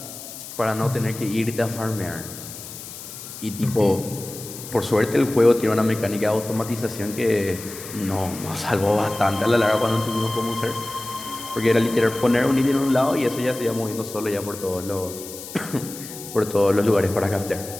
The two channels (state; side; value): noise; left; hiss, 12 dB below the sound